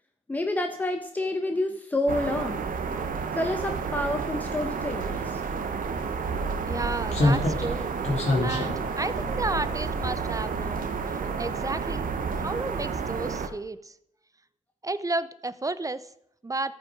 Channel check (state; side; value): normal; both; correlation 0.59